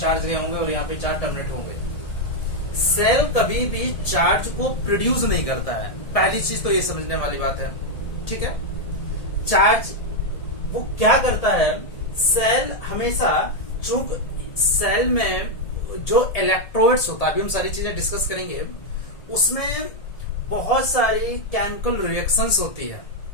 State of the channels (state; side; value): late; right; 1.8 ms